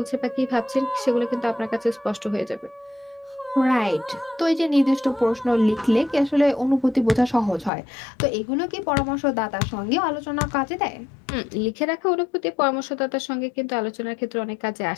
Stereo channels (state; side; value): drops out; right; at 7.7 s